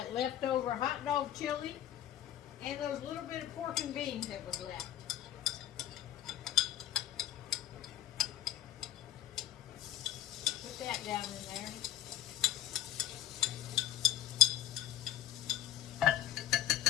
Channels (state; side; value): quieter; right; 12.1 dB